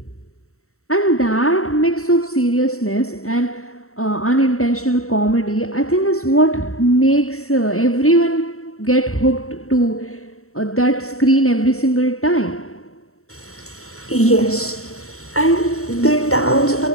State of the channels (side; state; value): right; late; 0.63 ms